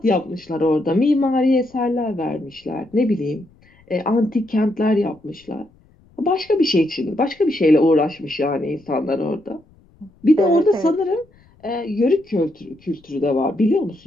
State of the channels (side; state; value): left; noise; rumble, 30 dB below the sound